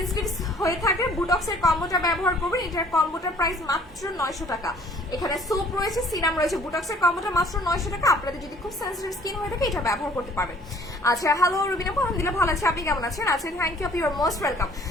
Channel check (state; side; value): normal; both; correlation 0.56